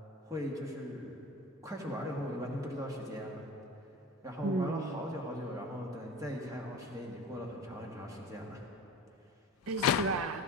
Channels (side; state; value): both; normal; correlation 0.36